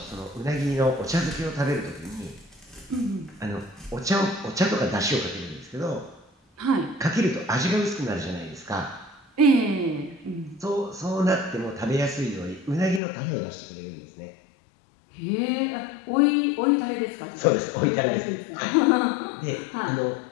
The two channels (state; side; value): drops out; right; at 13.0 s